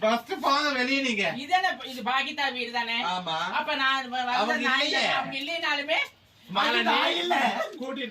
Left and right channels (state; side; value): identical; both; correlation 1.00